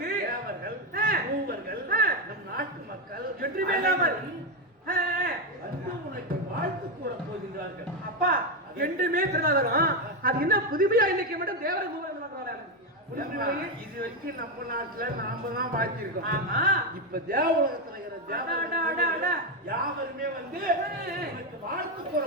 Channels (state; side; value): normal; both; correlation 0.07